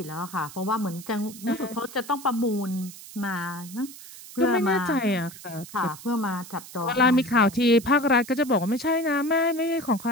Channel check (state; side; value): noise; right; hiss, 16 dB below the sound